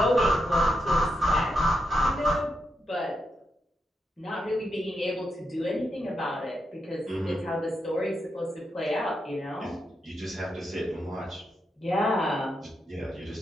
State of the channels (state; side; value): normal; both; correlation 0.84